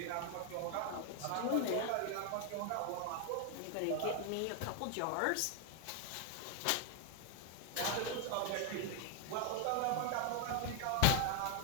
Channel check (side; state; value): both; different; correlation 0.01